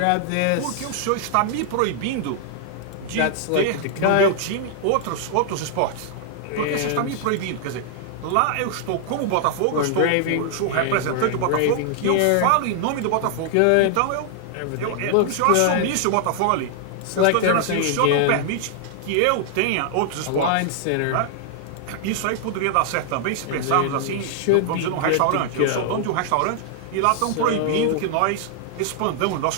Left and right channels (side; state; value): both; different; correlation -0.01